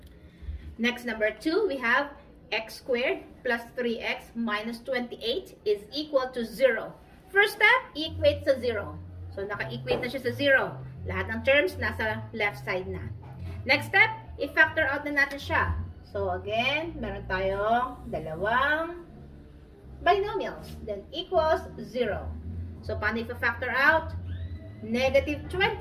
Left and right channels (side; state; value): both; identical; correlation 1.00